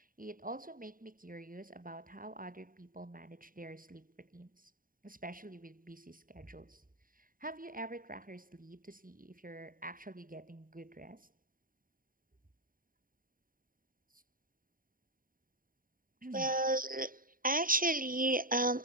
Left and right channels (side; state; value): left; late; 0.41 ms